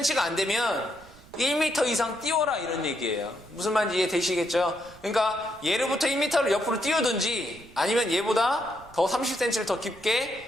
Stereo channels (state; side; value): noise; right; rumble, 23 dB below the sound